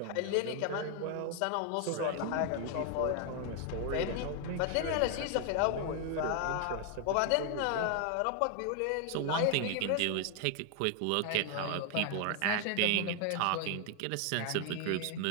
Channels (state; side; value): different; both; correlation 0.00